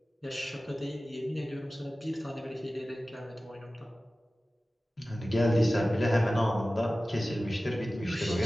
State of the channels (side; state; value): both; normal; correlation 0.96